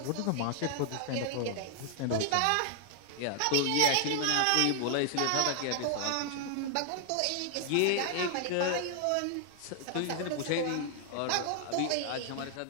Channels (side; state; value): both; different; correlation 0.00